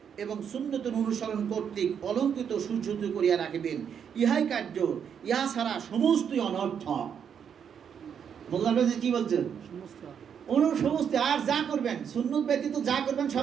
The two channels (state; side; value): quieter; left; 7.8 dB